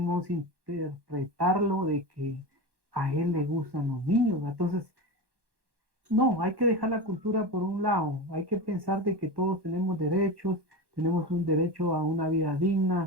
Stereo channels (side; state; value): left; late; 1.2 ms